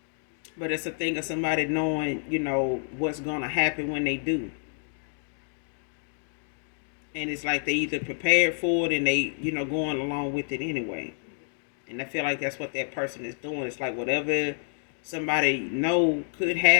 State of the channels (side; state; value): right; silent; 59 dB below the other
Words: But it's a thing of somebody knowing, what's gonna happen when they do. And it's like they either prepared for it and they, going along with it anyway. And I feel like that's what that person is doing. It's like whatever somebody know could